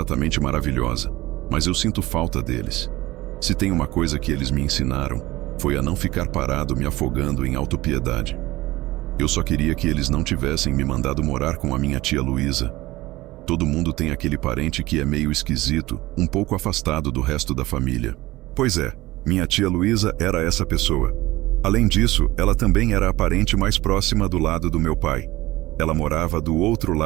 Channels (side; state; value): left; quieter; 18.5 dB